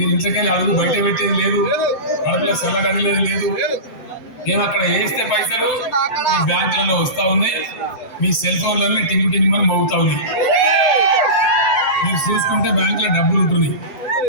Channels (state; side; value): late; right; 7.9 ms